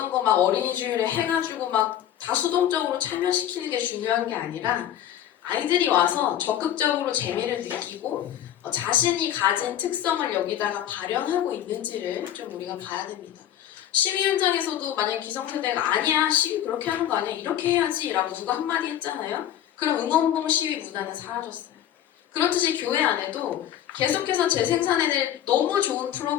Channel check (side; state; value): right; quieter; 11.1 dB